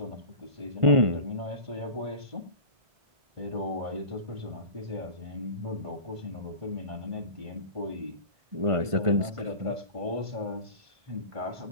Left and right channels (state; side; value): late; left; 1.5 ms